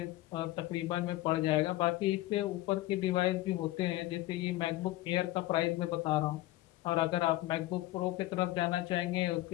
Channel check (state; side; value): quieter; right; 17.2 dB